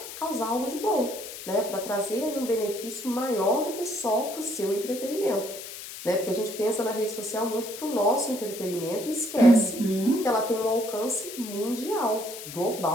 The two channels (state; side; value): noise; left; hiss, 11 dB below the sound